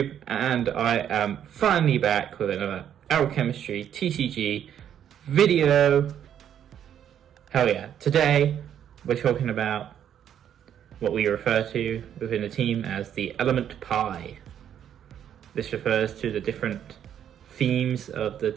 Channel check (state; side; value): quieter; left; 9.6 dB